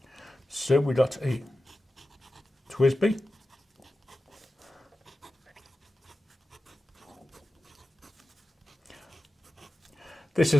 So we got a TWSBI. This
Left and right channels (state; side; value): normal; both; correlation 0.93